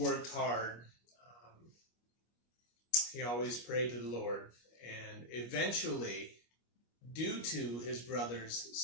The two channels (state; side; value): late; right; 25 ms